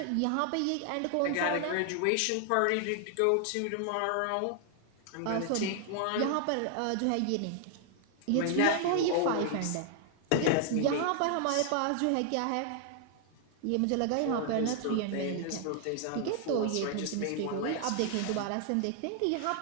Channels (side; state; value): both; different; correlation 0.00